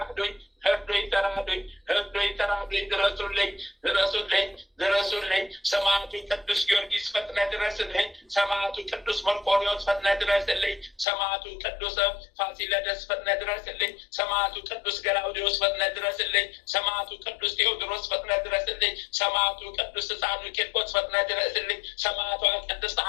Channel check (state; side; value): drops out; right; at 11.1 s